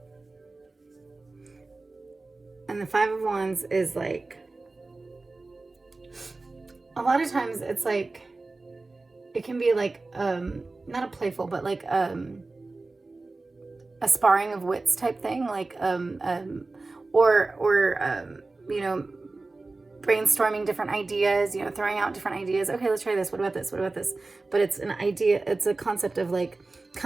And the Five of Wands is like, a lot of times it's like, it can be like, not a playful, but like a sparring of wits type thing, like, or you know, brainstorming different ideas, you know, throwing out different ideas. Okay, let's try this. What about this? What about this? But it's an idea. It's a concept of like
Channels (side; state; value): left; quieter; 3.4 dB